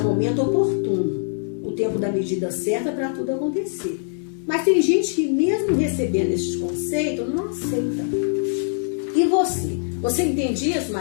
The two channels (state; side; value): silent; right; digital silence